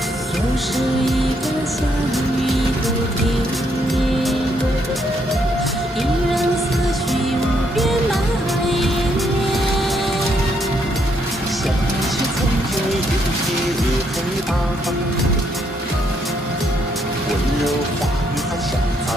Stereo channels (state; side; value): normal; both; correlation 0.73